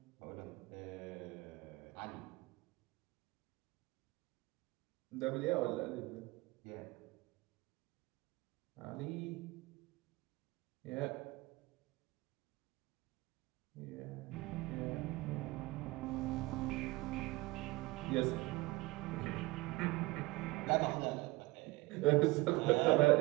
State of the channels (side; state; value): left; quieter; 21.4 dB